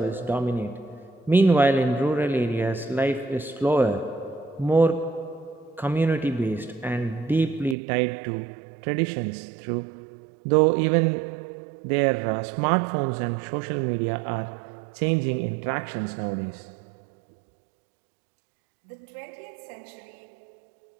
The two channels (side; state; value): left; drops out; at 7.8 s